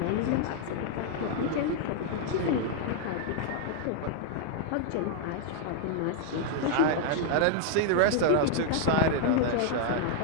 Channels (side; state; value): both; different; correlation 0.00